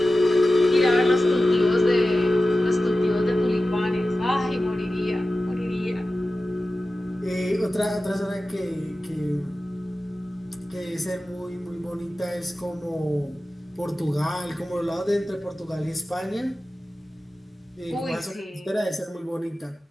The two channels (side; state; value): both; normal; correlation 0.94